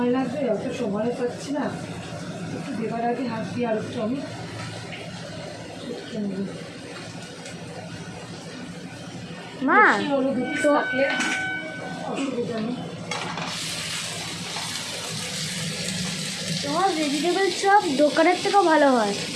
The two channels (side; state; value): both; identical; correlation 1.00